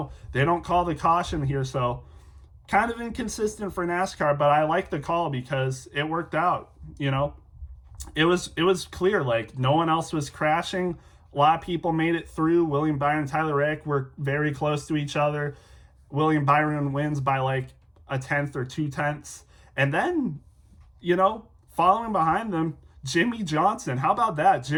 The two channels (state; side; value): identical; both; correlation 1.00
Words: they don't call the caution here, so kind of inconsistent for NASCAR, but I like the call because it worked out. You know, it was clear, like no one else was crashing. A lot of people made it through. William Byron and Tyler Reddick were very close to each other. William Byron wins by like 1/10 or 2/10. And then, you know, following behind them, Jimmy Johnson. How about that?